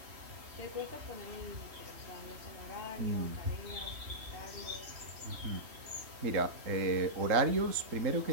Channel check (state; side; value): late; left; 3.7 ms